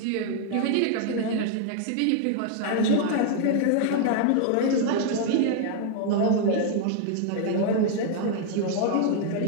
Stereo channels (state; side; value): different; both; correlation 0.00